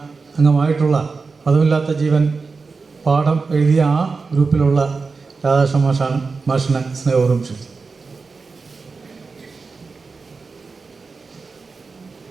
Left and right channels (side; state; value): left; quieter; 4.4 dB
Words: അംഗമായിട്ടുള്ള പദമില്ലാത്ത ജീവൻ പാഠം എഴുതിയ ആ ഗ്രൂപ്പിലുള്ള രാധാകൃഷ്ണ മാഷിനെ സ്നേഹപൂർവ്വം ക്ഷണിച്ചു.